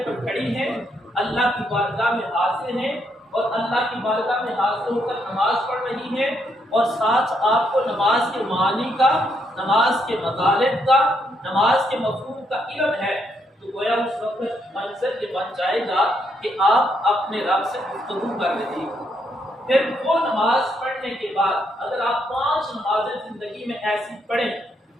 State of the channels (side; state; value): both; normal; correlation 0.76